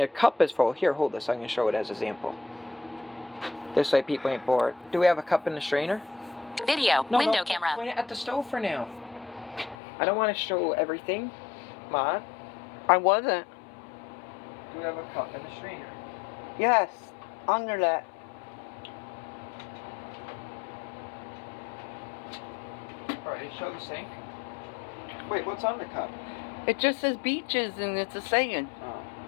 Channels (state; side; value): drops out; right; at 9.8 s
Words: cup is full. Here, hold this. I'm going to show it as an example. This way people ain't bored. Do we have a cup in the strainer? Video. No, Window no, camera. point it at the stove for now. I don't want to show everything. Ma, I wasn't. do we have a cup in the strainer? Yes. Under that. Alright, show the sink. Wait, what's on the cup? It just says beaches and it's a saying. Oh.